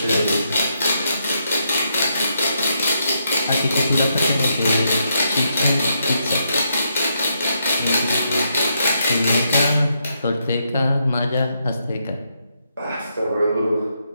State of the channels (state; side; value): inverted; both; correlation -0.79